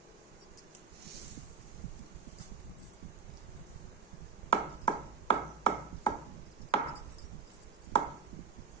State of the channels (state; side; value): quieter; left; 6.4 dB